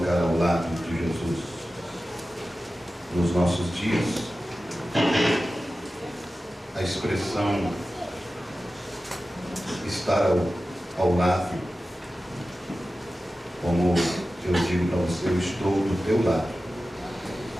ao lado de Jesus. Nos nossos dias, a expressão estar ao lado, como eu digo para você, eu estou do teu lado.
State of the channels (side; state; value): both; normal; correlation 0.94